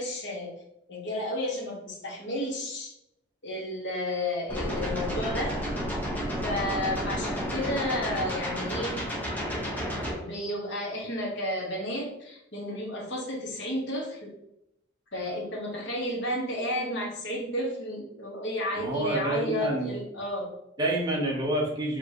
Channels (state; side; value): normal; both; correlation 0.23